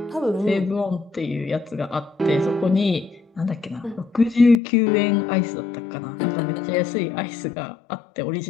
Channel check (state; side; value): drops out; right; at 4.5 s